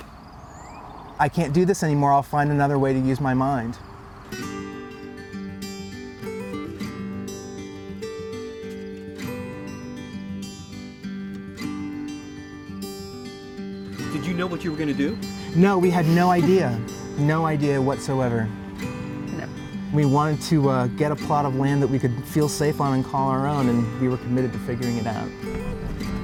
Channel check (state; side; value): identical; both; correlation 1.00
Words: I can't do this anymore. I'll find another way to use my mind. Did you know what you were going to do? No, we had no idea. No idea whatsoever. No. We wanted to get a plot of land that we could feel safe on and call our own, and we were committed to figuring it out.